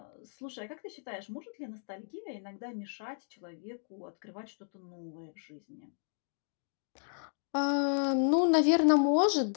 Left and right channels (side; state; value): right; silent; digital silence